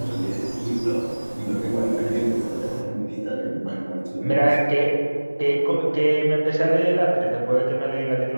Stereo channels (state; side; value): inverted; both; correlation -1.00